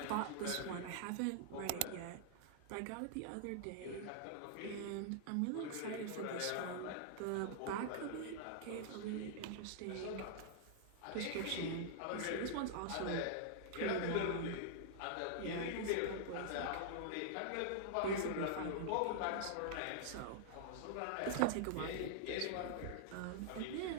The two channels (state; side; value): different; both; correlation -0.01